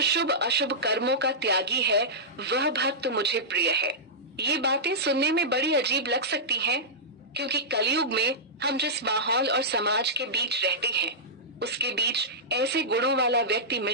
शुभ अशुभ कर्मों का त्यागी है, वह भक्त मुझे प्रिय है। ये बातें सुनने में बड़ी अजीब लग सकती हैं, क्योंकि कलयुग में हम जिस माहौल और समाज के बीच रहते हैं, उसके बीच ऐसे गुणों वाला व्यक्ति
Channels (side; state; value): both; normal; correlation -0.13